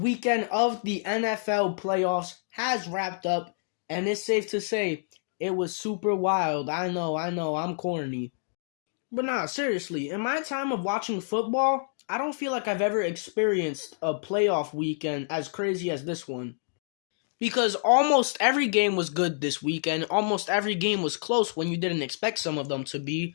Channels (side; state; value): right; silent; digital silence